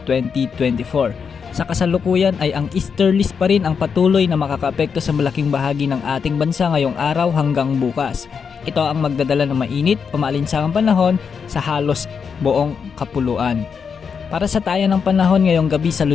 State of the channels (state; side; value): quieter; right; 6.2 dB